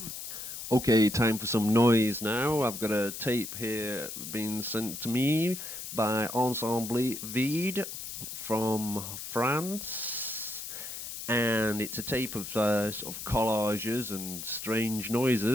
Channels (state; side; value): noise; left; hiss, 8 dB below the sound